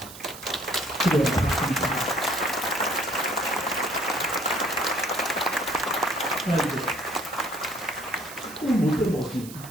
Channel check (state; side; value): noise; right; hiss, 15 dB below the sound